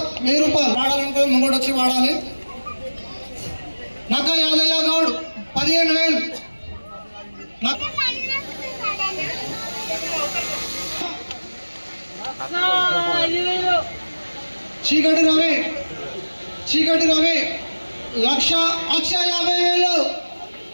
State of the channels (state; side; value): inverted; both; correlation -1.00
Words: 1000 రూపాయలు. వాడాలంటే ముంగడు వచ్చి వాడాలి. నక్క యాదయ్య గౌడ్ 15,000. చీకటి రవి 1,50,000.